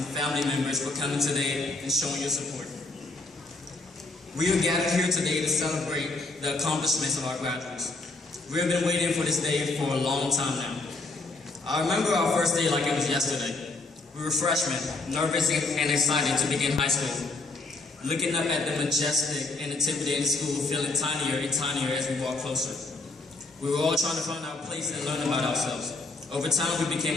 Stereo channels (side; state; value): right; quieter; 3.3 dB